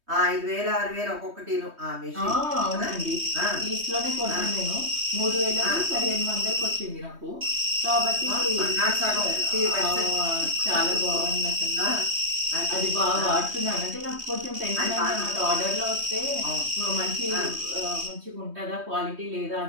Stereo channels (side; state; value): left; late; 3.2 ms